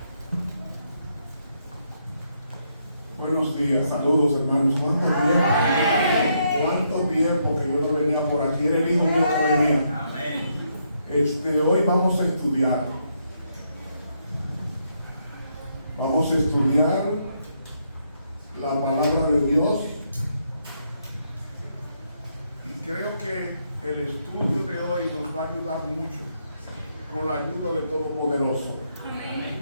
Buenos días, saludos hermanos. ¿Cuánto tiempo que yo no venía por aquí? Era el hijo mío que venía. Hoy vamos a estudiar. Vamos a estudiar la palabra de Dios. Y creo que el estudio de hoy nos va a ayudar mucho con la ayuda del Todopoderoso.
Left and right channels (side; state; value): both; inverted; correlation -0.76